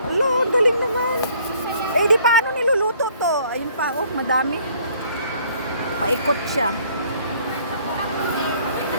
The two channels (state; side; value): inverted; both; correlation -0.60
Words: Alo, galing naman. Eh, di paano niluluto to? Ayun pa, oh, madami. Paikot siya.